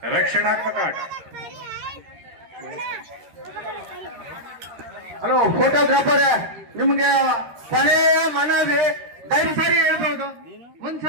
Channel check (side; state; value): left; late; 13 ms